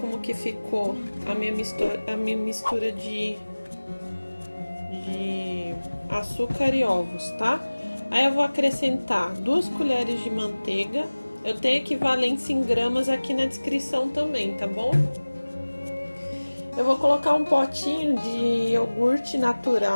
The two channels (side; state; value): both; inverted; correlation -1.00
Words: que ficou a minha mistura de açúcar e ovos, tá? Aí eu vou acrescentar 2 colheres de manteiga. Eu tenho equivalência em gramas aqui na descrição também, tá bom? Eu vou colocar um potinho de iogurte